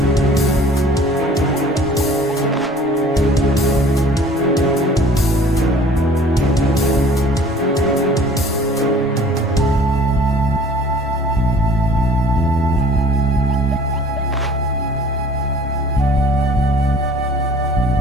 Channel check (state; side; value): normal; both; correlation 0.51